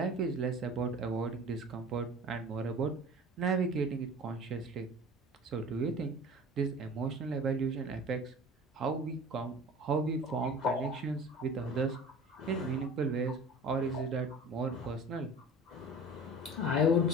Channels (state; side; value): normal; both; correlation 0.40